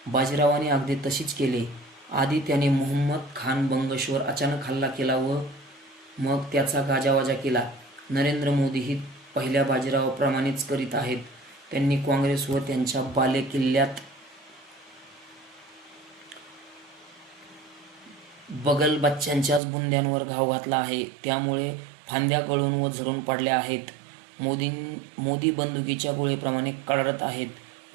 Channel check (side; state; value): left; drops out; at 19.6 s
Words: बाजीरावाने अगदी तशीच केले. आधी त्याने मुहम्मद खान बंगशवर अचानक हल्ला केला व मग त्याचा गाजावाजा केला. नरेंद्र मोदीही पहिल्या बाजीरावाप्रमाणेच करीत आहेत. त्यांनी काँग्रेस व त्यांच्या बालेकिल्ल्यात बगलबच्च्यांच्याच बुंद्यांवर घाव घातला आहे. त्यामुळे फांद्या गळून व झडून पडल्या आहेत. मोदी बंदुकीच्या गोळीप्रमाणे कडाडत आहेत